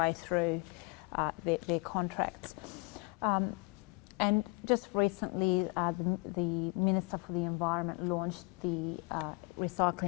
through their contracts. And just recently, the Minister for the Environment launched the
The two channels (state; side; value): quieter; right; 30.0 dB